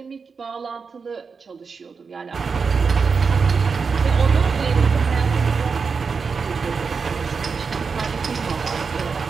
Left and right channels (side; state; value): left; quieter; 5.3 dB